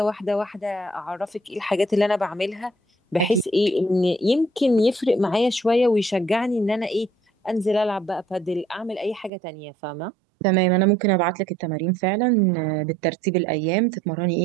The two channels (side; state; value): left; drops out; at 9.3 s